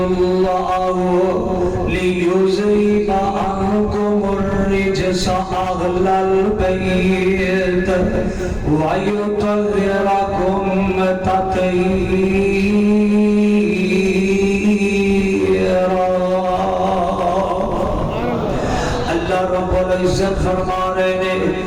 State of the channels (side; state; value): both; identical; correlation 1.00